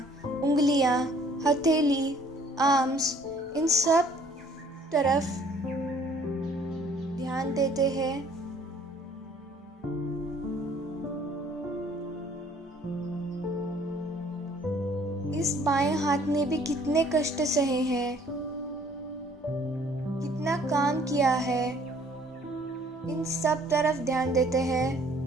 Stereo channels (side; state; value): both; normal; correlation 0.58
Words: उंगलियां, हथेली, आर्म्स, इन सब तरफ ध्यान देते हैं। इस बाएं हाथ ने भी कितने कष्ट सहे हैं। कितना काम किया है, इन सब तरफ ध्यान देते हैं।